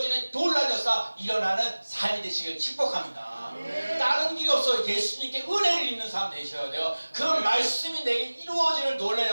놀라운 역사 일어나는 삶이 되시길 축복합니다. 다른 길이 없어. 예수님께 은혜를 입는 사람 되셔야 돼요. 그 말씀이 내게 이루어지는 놀라운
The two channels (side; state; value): both; inverted; correlation -1.00